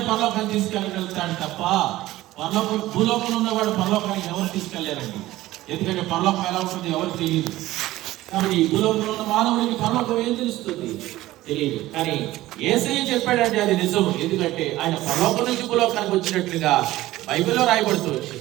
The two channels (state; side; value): quieter; left; 16.4 dB